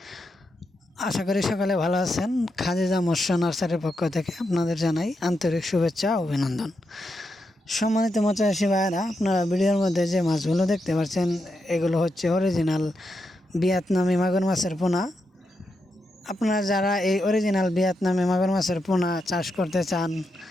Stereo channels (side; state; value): both; normal; correlation 0.85